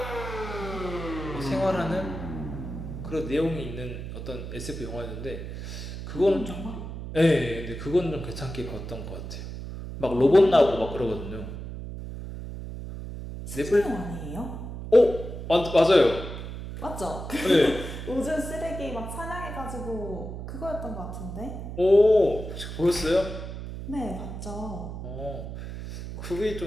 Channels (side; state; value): right; noise; hum, 8 dB below the sound